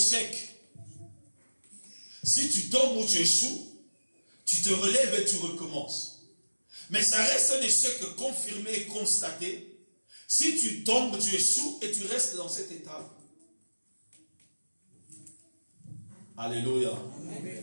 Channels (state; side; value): inverted; both; correlation -1.00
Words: si tu tombes ou tu échoues, tu te relèves et tu recommences. Mais ça reste un échec confirmé et constaté si tu tombes, tu échoues et tu restes dans cet état. Alléluia. Amen.